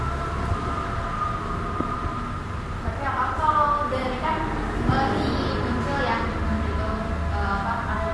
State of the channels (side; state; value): both; identical; correlation 1.00